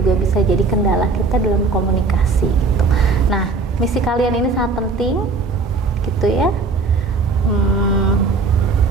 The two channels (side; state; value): left; quieter; 4.1 dB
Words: bisa jadi kendala kita dalam komunikasi gitu. Nah, misi kalian ini sangat penting, gitu ya.